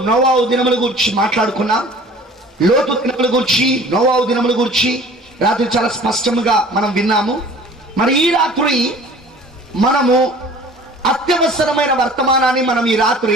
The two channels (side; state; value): both; normal; correlation 0.47